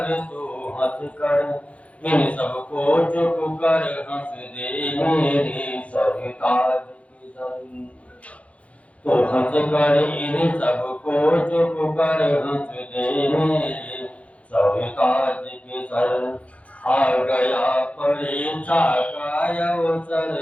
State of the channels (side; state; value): right; late; 0.064 ms